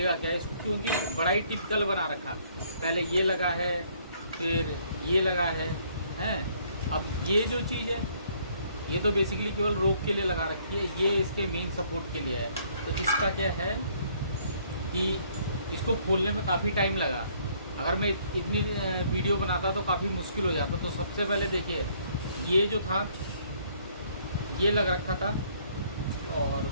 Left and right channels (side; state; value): both; inverted; correlation -0.64